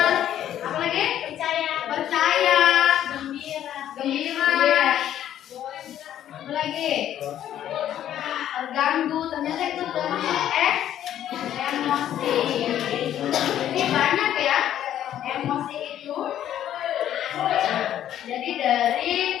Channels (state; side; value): quieter; right; 11.2 dB